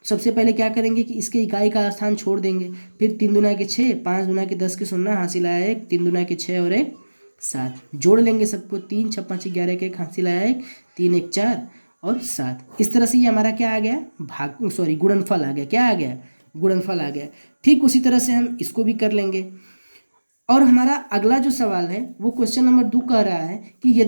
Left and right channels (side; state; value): both; inverted; correlation -1.00